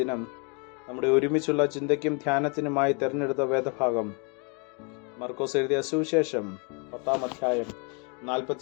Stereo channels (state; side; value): quieter; right; 35.5 dB